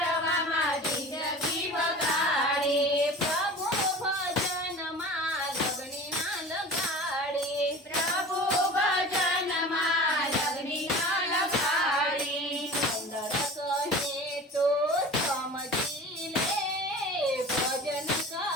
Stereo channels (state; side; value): normal; both; correlation 0.38